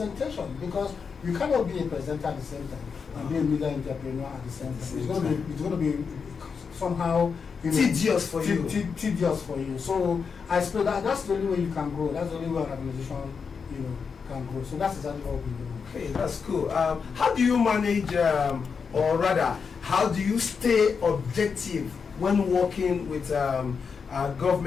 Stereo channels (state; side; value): quieter; right; 5.8 dB